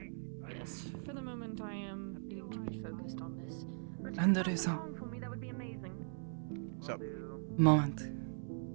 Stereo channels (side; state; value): left; silent; 51 dB below the other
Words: Yes. For the moment, I am needing to be focused on this. And there is a For me, that would be amazing. Sup? moment.